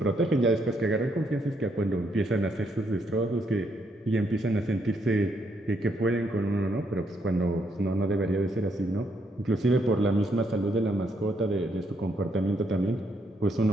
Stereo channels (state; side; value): normal; both; correlation 0.75